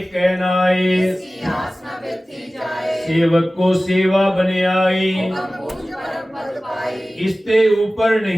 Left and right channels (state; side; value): normal; both; correlation 0.97